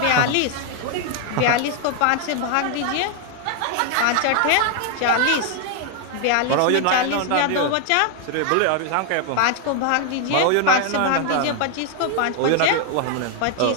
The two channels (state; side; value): different; both; correlation 0.00